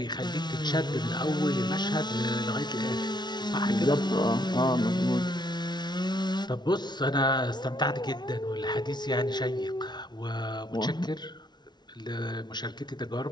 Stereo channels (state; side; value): late; right; 0.20 ms